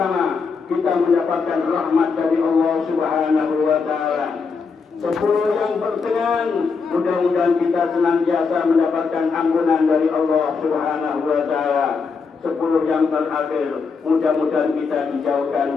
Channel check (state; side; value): quieter; right; 5.1 dB